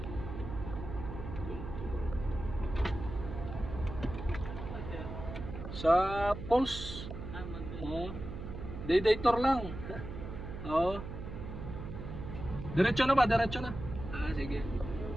Sa Pulse. Oh. Day tour lang. Oh. Diretso na ba? Diretso na. Ah, sige.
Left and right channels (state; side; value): noise; right; hum, 8 dB below the sound